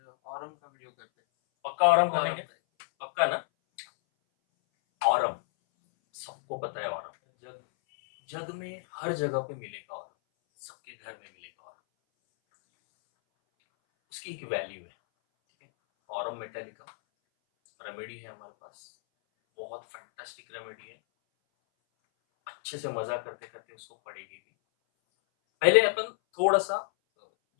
ऑरम का वीडियो करते हैं। पक्का ऑरम करेंगे? पक्का ना? ऑरम सबको पता है। ऑरम जग जग में हर जगह पे मिलेगा। ऑरम सबके घर में मिलेगा। ऑरम उसकी एक वैल्यू है, ठीक है। ऑरम मेटालिका रेमेडी है हमारे पास, बहुत फैंटास्टिक रेमेडी है। अच्छे से मजा करते करते उसको पढ़ेगी भी। पहले अपन थोड़ा सा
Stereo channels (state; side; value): silent; right; 58 dB below the other